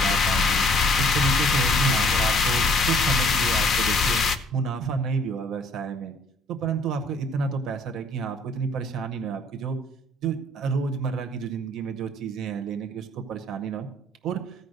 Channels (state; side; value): normal; both; correlation 0.59